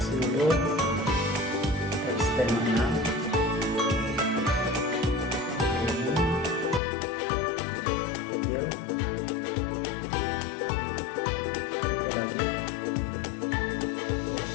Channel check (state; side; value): drops out; right; at 6.8 s